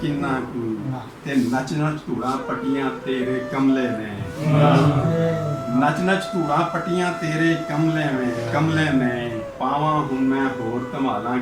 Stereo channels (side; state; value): both; identical; correlation 1.00